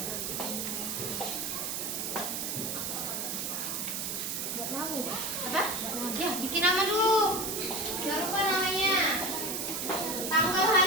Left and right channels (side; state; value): right; noise; hiss, 2 dB below the sound